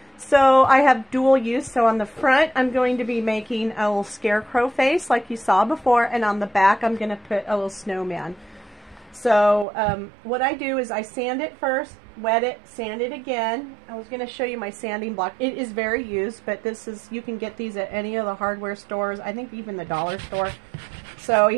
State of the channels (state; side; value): drops out; left; at 9.7 s